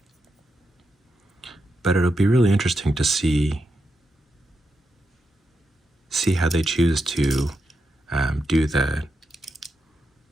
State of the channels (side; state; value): both; normal; correlation 0.85